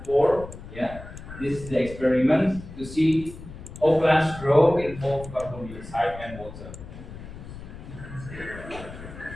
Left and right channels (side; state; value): left; noise; rumble, 13 dB below the sound